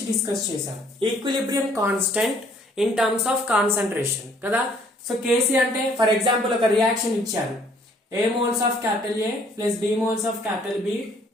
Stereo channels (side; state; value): both; normal; correlation 0.61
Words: discuss చేసాం. Equilibrium constant in terms of concentration కదా. So Kc అంటే for example ఒక reaction ఇచ్చారు. A moles of capital A plus B moles of capital B